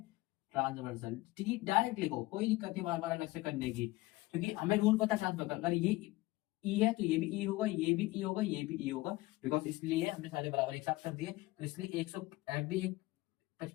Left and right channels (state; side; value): quieter; right; 19.6 dB